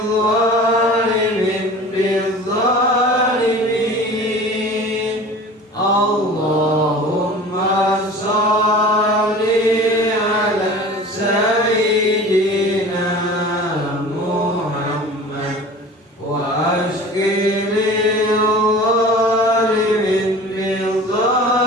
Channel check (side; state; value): both; normal; correlation 0.40